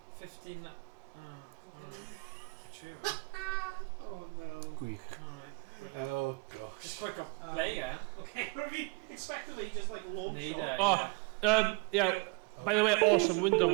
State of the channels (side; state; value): left; quieter; 29.5 dB